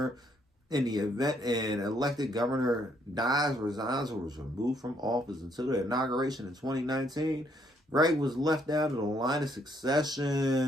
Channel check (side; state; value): both; normal; correlation 0.70